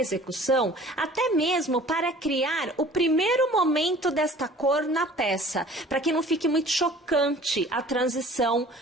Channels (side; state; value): both; normal; correlation 0.48